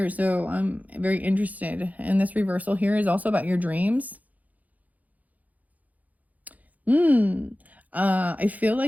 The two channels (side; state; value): left; late; 0.077 ms